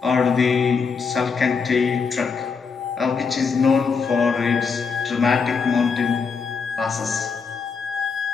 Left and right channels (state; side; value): quieter; right; 5.4 dB